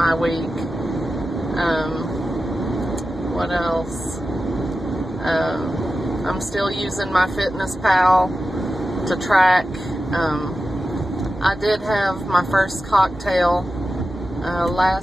week. What else? I'm still using my Fitness Pal to track. I did have my first cocktail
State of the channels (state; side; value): normal; both; correlation 0.92